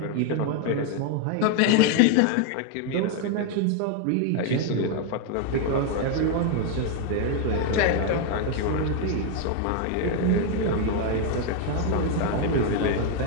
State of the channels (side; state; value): both; different; correlation 0.01